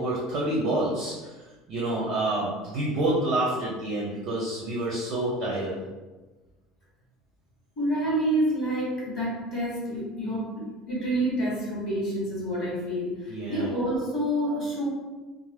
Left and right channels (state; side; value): normal; both; correlation 0.36